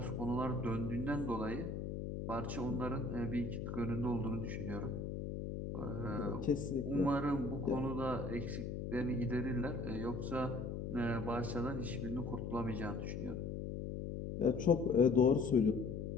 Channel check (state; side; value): noise; left; hum, 4 dB below the sound